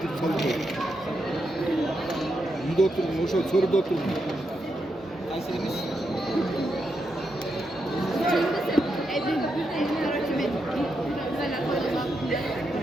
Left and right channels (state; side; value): normal; both; correlation 0.84